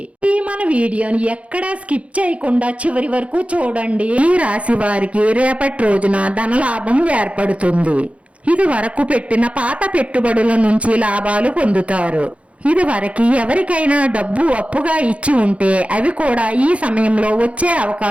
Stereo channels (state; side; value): late; left; 0.063 ms